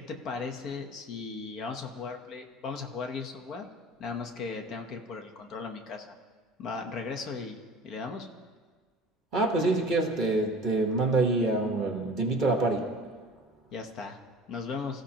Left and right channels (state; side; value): normal; both; correlation 0.42